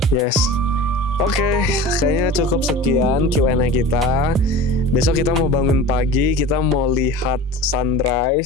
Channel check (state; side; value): normal; both; correlation 0.36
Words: yes. Oke, kayaknya cukup sekian Q&A kita. Besok kita mau bangun pagi, kita mau lihat